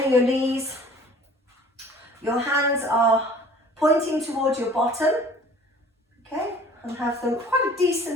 your knees. Your hands are pointing towards your bottom. Okay, and have them quite a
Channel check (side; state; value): both; normal; correlation 0.49